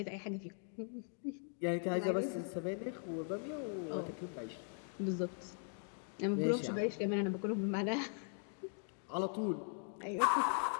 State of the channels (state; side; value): silent; right; 51 dB below the other